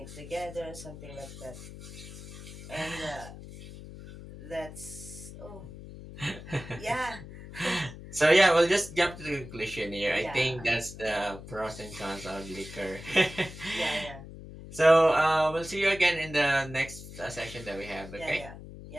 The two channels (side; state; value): left; noise; hum, 14 dB below the sound